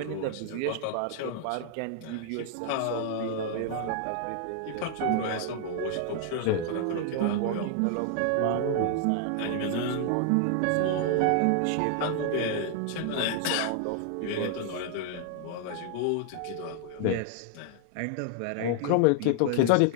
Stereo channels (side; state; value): both; different; correlation 0.00